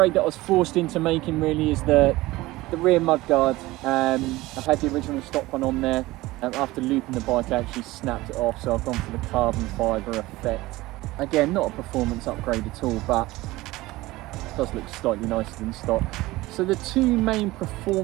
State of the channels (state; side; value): quieter; left; 19.1 dB